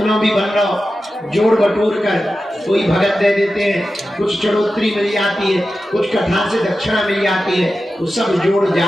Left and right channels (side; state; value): both; normal; correlation 0.92